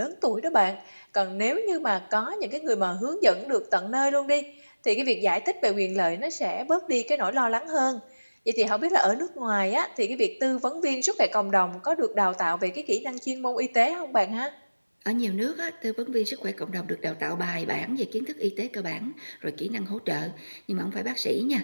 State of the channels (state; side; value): inverted; both; correlation -1.00